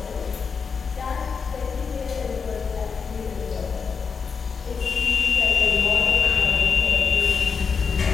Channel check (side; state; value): right; quieter; 5.7 dB